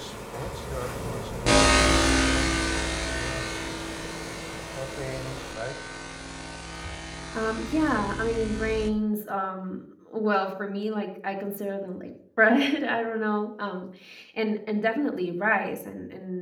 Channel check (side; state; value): both; identical; correlation 1.00